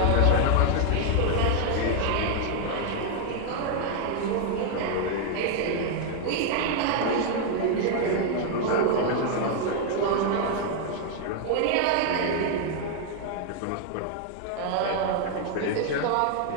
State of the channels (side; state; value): both; different; correlation 0.00